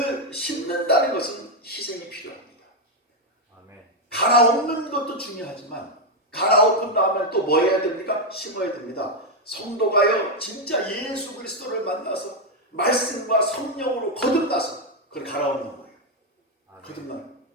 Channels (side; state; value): both; normal; correlation 0.03